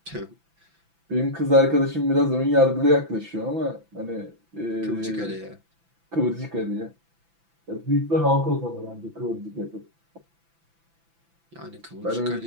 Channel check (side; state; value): left; late; 6.0 ms